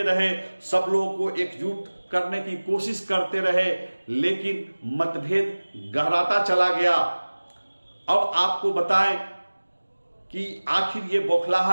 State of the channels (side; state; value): both; inverted; correlation -1.00